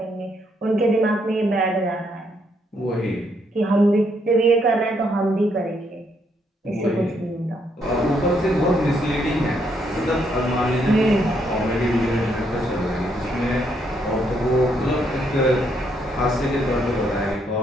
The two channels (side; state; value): both; normal; correlation 0.74